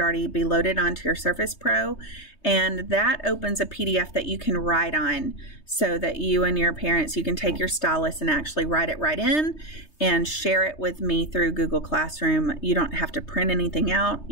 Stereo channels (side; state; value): right; late; 3.2 ms